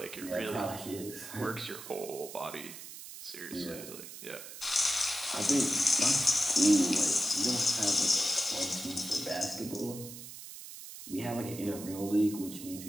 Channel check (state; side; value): noise; right; hiss, 12 dB below the sound